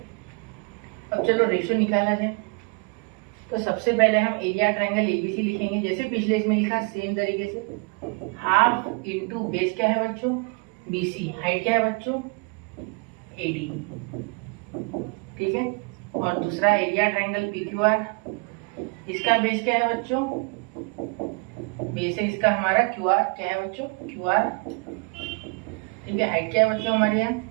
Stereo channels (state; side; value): quieter; left; 32.2 dB